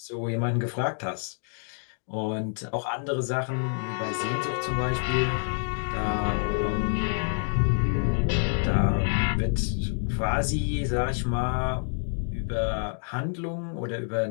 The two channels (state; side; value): silent; right; 60 dB below the other